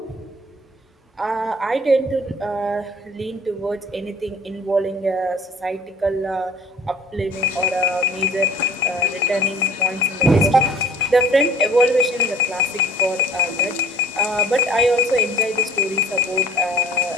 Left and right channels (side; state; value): both; normal; correlation 0.50